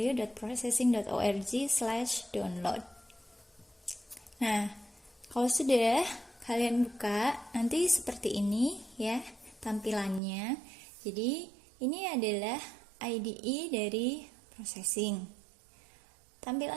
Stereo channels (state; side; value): drops out; left; at 10.2 s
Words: Nah, kalau sudah kalian buka, nanti seperti ini ya tampilannya. Jadi ini adalah IDE dari processing.